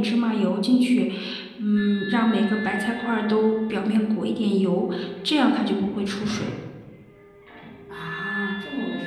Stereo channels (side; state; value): both; identical; correlation 1.00